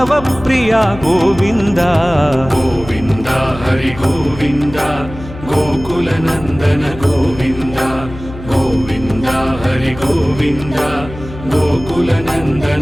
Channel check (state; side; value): noise; left; hum, 14 dB below the sound